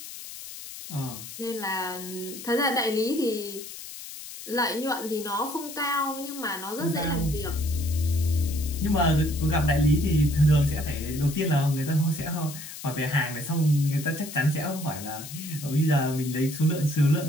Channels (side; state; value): left; noise; hiss, 12 dB below the sound